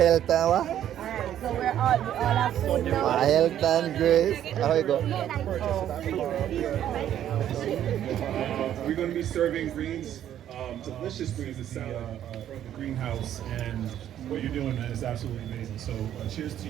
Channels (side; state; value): left; quieter; 11.0 dB